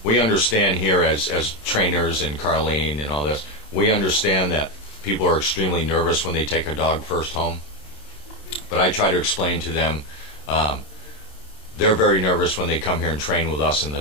We understand here as trainers and Carlene and all this, we understand that people are extremely nervous when they take a dog first home. But I try to explain to them, they're very nervous when they come here and train with us and the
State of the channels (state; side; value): late; right; 27 ms